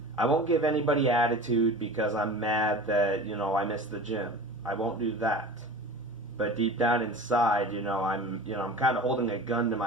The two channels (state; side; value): normal; both; correlation 0.36